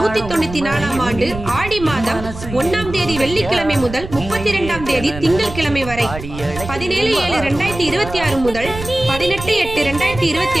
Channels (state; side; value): noise; right; rumble, 11 dB below the sound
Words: ஆண்டு ஆடி மாதம் 1ஆம் தேதி வெள்ளிக்கிழமை முதல் 32ஆம் தேதி திங்கட்கிழமை வரை 17/7/2026 முதல்